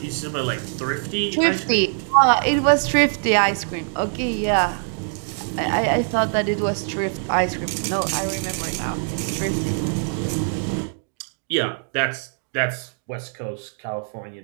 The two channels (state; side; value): silent; left; 63 dB below the other